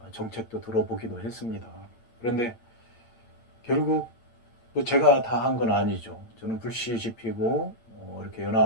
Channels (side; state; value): right; late; 8.9 ms